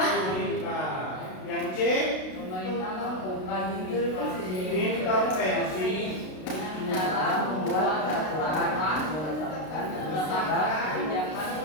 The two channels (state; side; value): late; right; 32 ms